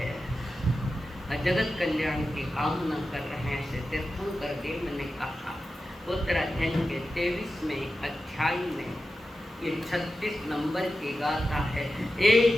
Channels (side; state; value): both; normal; correlation 0.92